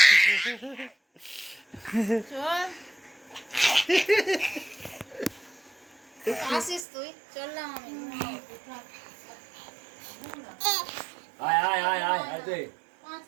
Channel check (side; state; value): left; drops out; at 6.9 s